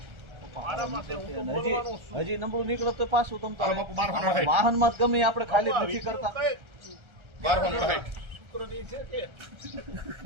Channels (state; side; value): late; left; 1.3 ms